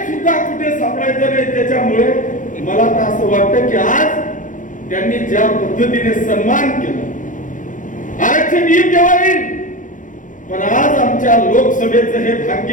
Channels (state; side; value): late; right; 0.38 ms